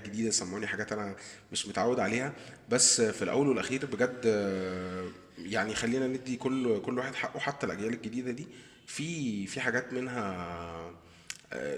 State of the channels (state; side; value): identical; both; correlation 1.00